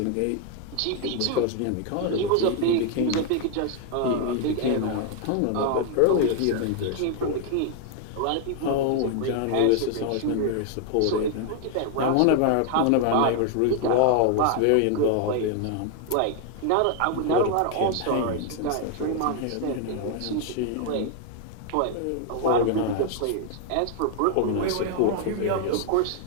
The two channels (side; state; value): both; different; correlation 0.00